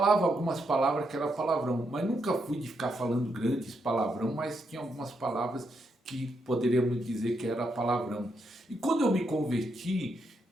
algumas palavras que era palavrão, mas nunca fui de ficar falando grandes palavrão, mas tinha algumas palavras que poderíamos dizer que era palavrão. E quando eu me converti,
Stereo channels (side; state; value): both; normal; correlation 0.80